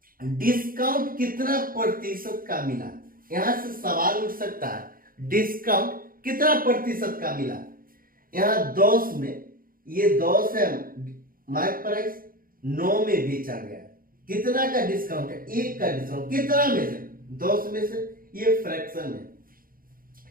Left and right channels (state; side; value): late; left; 0.41 ms